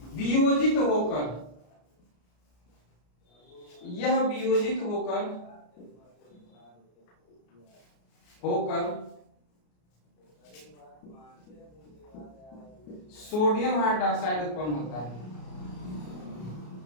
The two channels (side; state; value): right; late; 33 ms